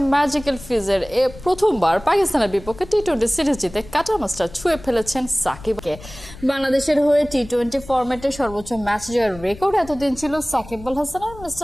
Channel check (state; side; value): noise; left; rumble, 17 dB below the sound